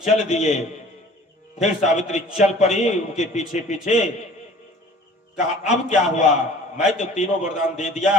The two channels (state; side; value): normal; both; correlation 0.48